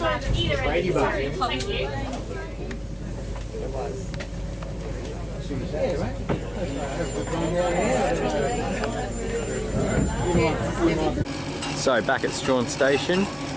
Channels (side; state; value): both; identical; correlation 1.00